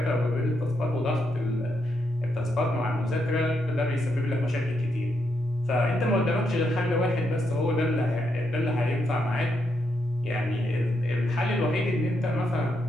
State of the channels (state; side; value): normal; both; correlation 0.80